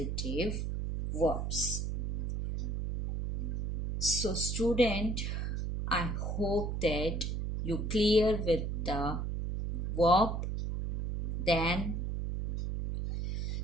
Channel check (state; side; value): noise; right; hum, 1 dB below the sound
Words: verbs. So student, I hope that you clear with the verb. Then